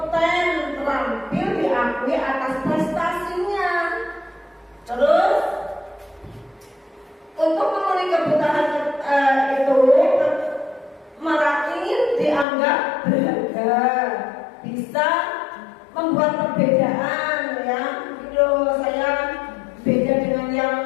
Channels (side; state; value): right; drops out; at 12.5 s